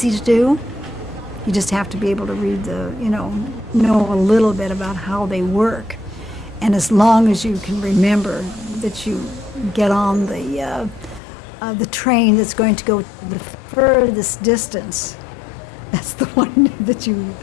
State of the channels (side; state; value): right; drops out; at 11.2 s